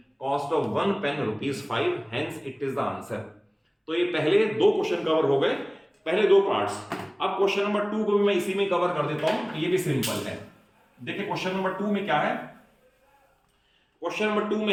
cost of 1 pen ₹5, hence it is the answer. तो ये पहले 2 question cover हो गए, पहले 2 पार्ट्स। अब क्वेश्चन नंबर 2 को भी मैं इसी में कवर कर देता हूं, ये भी सिंपल है। देखिए क्वेश्चन नंबर 2 में क्या है, क्वेश्चन नंबर 2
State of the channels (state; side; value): identical; both; correlation 1.00